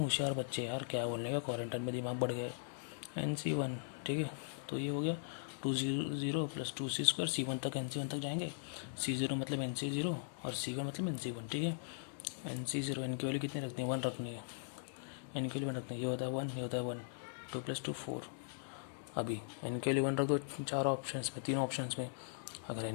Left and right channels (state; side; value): silent; right; digital silence